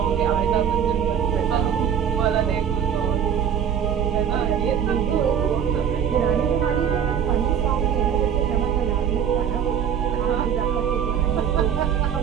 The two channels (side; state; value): left; quieter; 8.4 dB